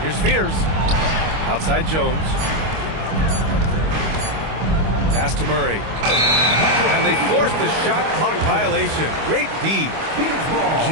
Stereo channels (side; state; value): left; late; 25 ms